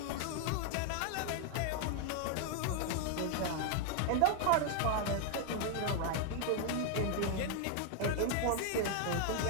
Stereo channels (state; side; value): different; both; correlation 0.00